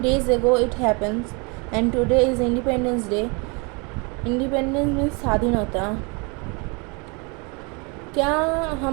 days ago it happens, and today is Independence Day. Independence means स्वाधीनता. क्या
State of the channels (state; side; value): quieter; left; 31.1 dB